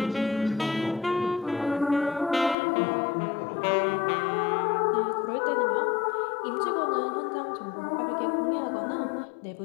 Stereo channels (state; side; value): drops out; right; at 2.6 s